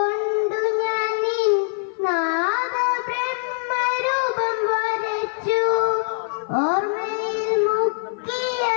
ഞാൻ നിൻ നാദ ബ്രഹ്മരൂപം വരച്ചു. ഓർമ്മയിൽ മുക്കിയ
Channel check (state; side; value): silent; right; 55 dB below the other